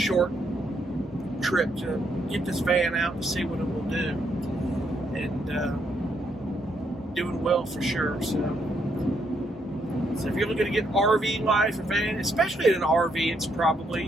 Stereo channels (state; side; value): normal; both; correlation 0.75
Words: trip to get this van out to see what it will do. And doing well for sure. So if you're looking to get RV life or van, especially in an RV, it's